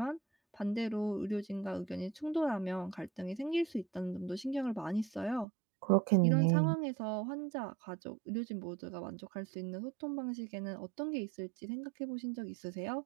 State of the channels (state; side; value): drops out; left; at 5.5 s